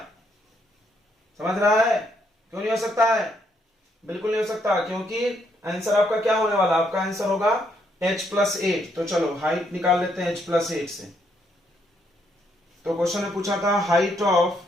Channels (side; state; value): both; normal; correlation 0.74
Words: समझ रहा है? क्यों नहीं हो सकता है? बिल्कुल नहीं हो सकता, क्योंकि आंसर आपका क्या होने वाला, आपका आंसर होगा h+8। तो चलो हाइट निकाल लेते हैं h+8 से। तो क्वेश्चन ने पूछा था height of